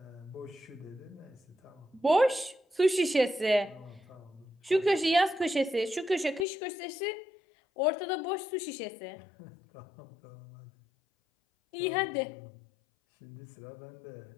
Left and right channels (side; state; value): right; drops out; at 6.5 s